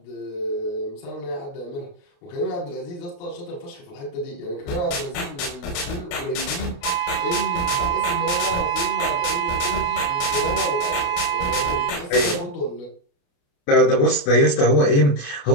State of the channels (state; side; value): late; right; 28 ms